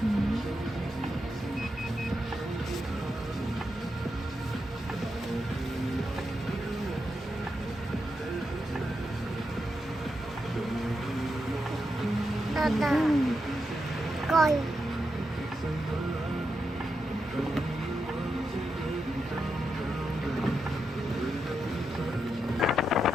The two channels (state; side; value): normal; both; correlation 0.85